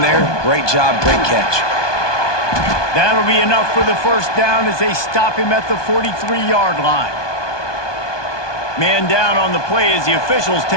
there. Great job, great catch. That'll be enough for the 1st down as they stop him at the 43-yard line. Man down on the play as the officials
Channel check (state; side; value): late; right; 1.2 ms